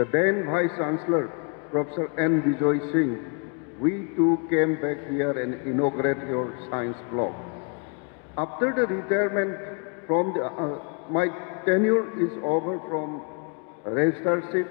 then Vice Chancellor, Professor N. Bijoy Singh, we too came back here and inaugurated your science block. After the retirement from the, my tenure is over from registrarship,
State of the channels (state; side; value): quieter; right; 36.6 dB